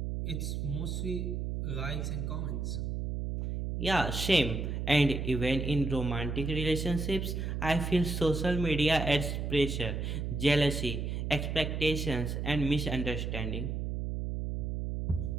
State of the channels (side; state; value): right; noise; hum, 2 dB below the sound